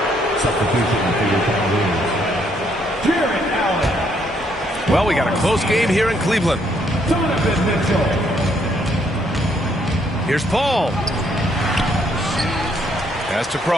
Well, we got a close game here in Cleveland. Here's Paul. Pass to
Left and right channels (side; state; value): both; normal; correlation 0.70